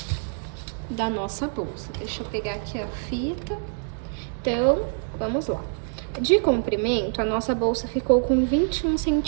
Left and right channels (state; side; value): silent; left; 57 dB below the other